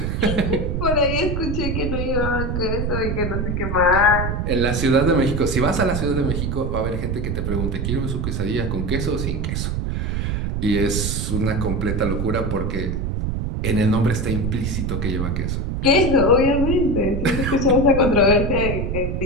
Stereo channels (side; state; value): right; noise; rumble, 1 dB below the sound